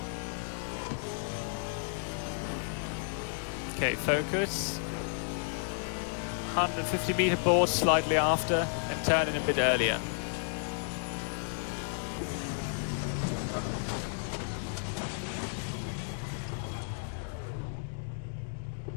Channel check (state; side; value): silent; right; digital silence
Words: Okay, focus. 150 meter board slightly after and turn in a bit earlier.